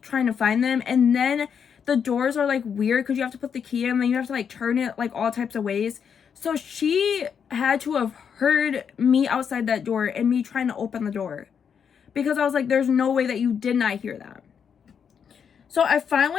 trying to find them, and then the doors are like weird because you have to put the key in and then you have to like turn it like all types of ways. So she had to have heard me outside that door and me trying to open the door, because I was like, there's no way that you did not hear that. So I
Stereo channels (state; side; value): quieter; right; 7.2 dB